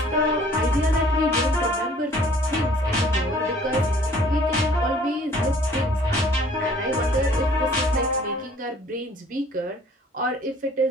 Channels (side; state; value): both; normal; correlation 0.55